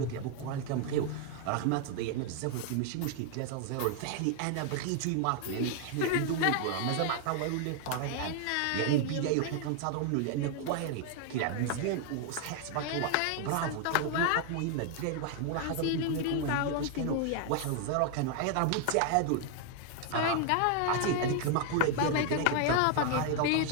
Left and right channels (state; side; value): different; both; correlation 0.00